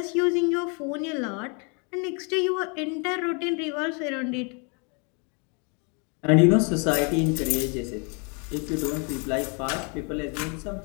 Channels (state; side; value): quieter; right; 35.4 dB